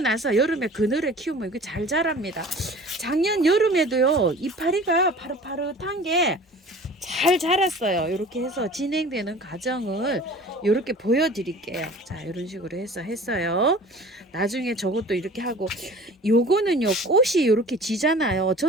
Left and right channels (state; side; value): normal; both; correlation 0.44